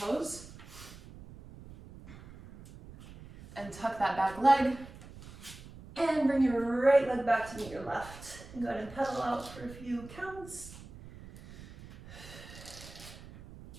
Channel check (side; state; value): right; noise; rumble, 17 dB below the sound